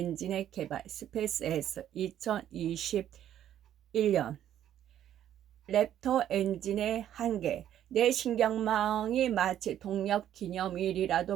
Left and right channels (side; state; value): left; quieter; 11.0 dB